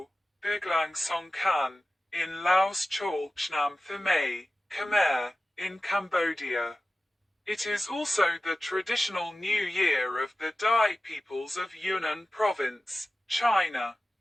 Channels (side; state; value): both; normal; correlation 0.96